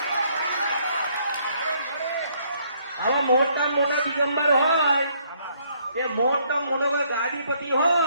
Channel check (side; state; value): both; inverted; correlation -0.67